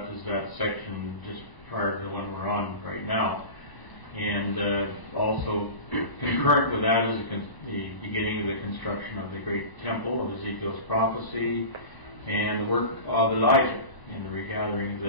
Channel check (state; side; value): late; right; 1.0 ms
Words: is that section just prior to the one we're on right now. And also concurrent with that is the beginning of the construction of the great temple of Ezekiel's prophecy, and the work of Elijah in the regathering of